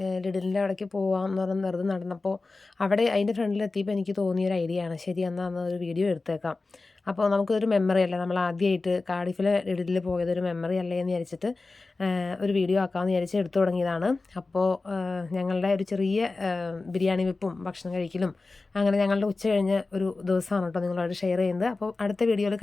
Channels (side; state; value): right; quieter; 3.6 dB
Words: ലിഡിലിൻ്റെ അവിടേക്ക് പോകാമെന്ന് പറഞ്ഞ് വെറുതെ നടന്നപ്പോൾ അവിടെ അതിൻ്റെ ഫ്രണ്ടിലെത്തിയപ്പോൾ എനിക്ക് തോന്നിയൊരു ഐഡിയ ആണ്. ശരി, എന്നാൽ ഒരു വീഡിയോ എടുത്തേക്കാം. അപ്പോൾ നമുക്കൊരു മെമ്മറി അല്ലേ, നമ്മൾ ആദ്യമായിട്ട് കാർഡിഫിലെ ലിഡിലിൽ പോയതൊരു മെമ്മറി അല്ലേ എന്ന് വിചാരിച്ചിട്ട് ഒരു വീഡിയോ ആക്കാമെന്ന് വിചാരിച്ച് എടുത്തു തുടങ്ങിയതാണ്. അപ്പോൾ ഞങ്ങളുടെ ഒരു ചെറിയ ബിരിയാണി വെപ്പും ഭക്ഷണം കഴിക്കലും അങ്ങനെ ഞങ്ങളുടെ ഉച്ച കഴിഞ്ഞ ഒരു ദിവസമാണ് കേട്ടോ നിങ്ങളോട് ഷെയർ ചെയ്യുന്നത്. അപ്പോൾ അടുത്ത വീഡിയോയിൽ